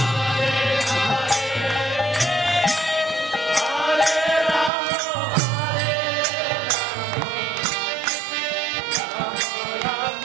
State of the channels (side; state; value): left; drops out; at 4.7 s